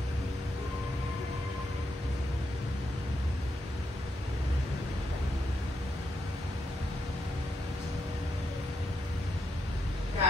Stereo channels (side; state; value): both; normal; correlation 0.81